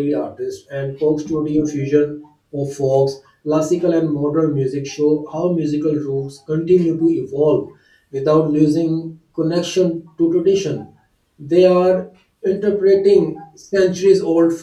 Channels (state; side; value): identical; both; correlation 1.00